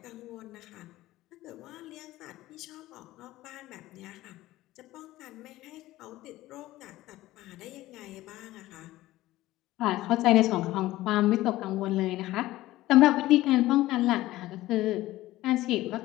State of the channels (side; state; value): right; quieter; 16.6 dB